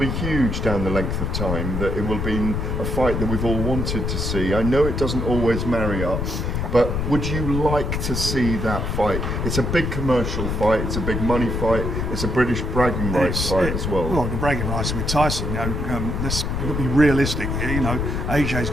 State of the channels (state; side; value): noise; left; rumble, 1 dB below the sound